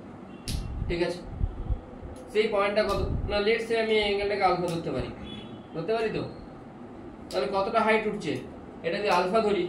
ঠিক আছে? সেই পয়েন্টটা কত না, লেটস সে আমি অ্যাঙ্গেলটাকে আলফা ধরতে পারি তো? তাহলে কতটা হাইট উঠছে? এটা যদি আলফা ধরি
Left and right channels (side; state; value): both; identical; correlation 1.00